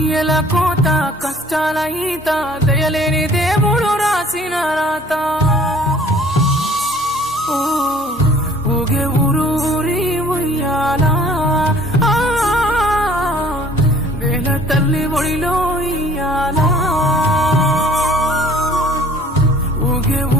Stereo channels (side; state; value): both; normal; correlation 0.52